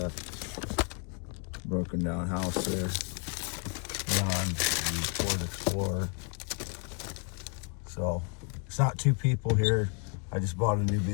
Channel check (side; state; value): right; quieter; 36.5 dB